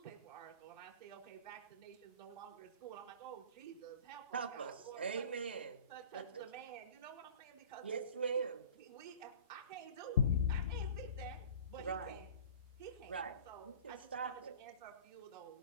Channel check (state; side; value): inverted; both; correlation -0.43